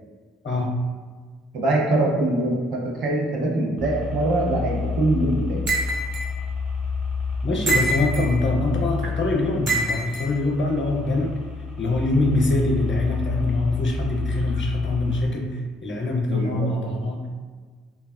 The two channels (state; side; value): normal; both; correlation 0.68